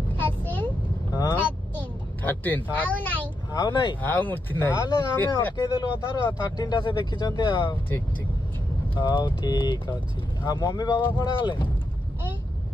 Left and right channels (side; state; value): both; normal; correlation 0.84